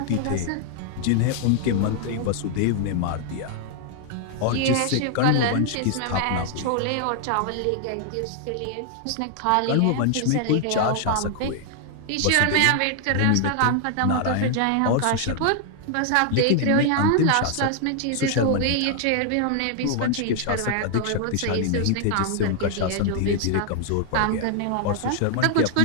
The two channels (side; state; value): both; different; correlation 0.00